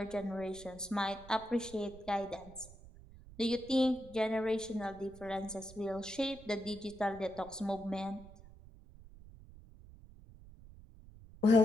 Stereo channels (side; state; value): right; noise; rumble, 19 dB below the sound